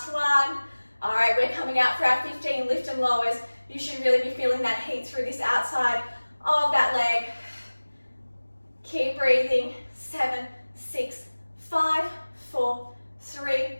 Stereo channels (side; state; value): both; inverted; correlation -1.00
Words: 1. All right, we're coming out for our 15 lift and lowers. You should really be feeling that heat through this outside of that leg. Keep breathing. 7, 6, 5, 4, 3,